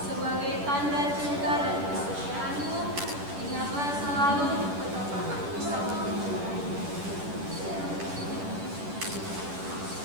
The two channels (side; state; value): left; late; 10 ms